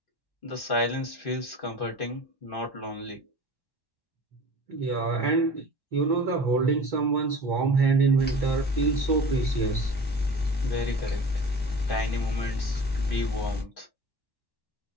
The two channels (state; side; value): late; right; 1.1 ms